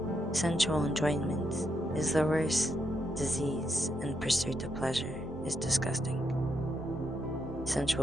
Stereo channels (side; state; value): both; normal; correlation 0.80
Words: Sensual enjoyment is the worst disease, and pursuit of pleasure is disgusting.